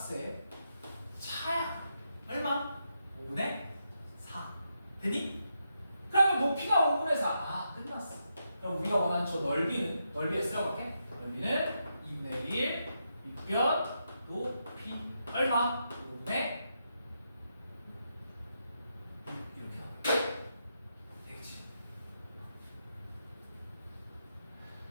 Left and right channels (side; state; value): both; inverted; correlation -0.83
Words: 차야. 얼마? 5분의 4. 되니? 그러면 높이가 5분의 4. 아 끝났어. 그럼 우리가 원하는 저 넓이는 넓이에 쓰려볼게. 넓이는 2분의 1 밑변 높이 얼마? 5분의 6 이렇게 나와. 되겠지?